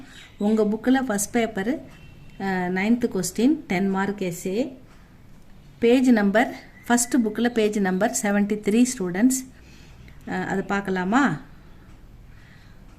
உங்கள் புக்கில் first paper 9th question 10 mark SA. Page number first புக்கில் பேஜ் நம்பர் 73 ஸ்டூடெண்ட்ஸ். அது பார்க்கலாமா?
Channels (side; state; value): both; identical; correlation 1.00